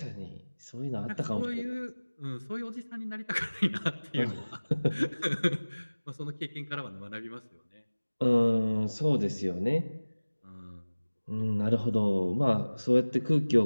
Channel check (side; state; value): both; inverted; correlation -1.00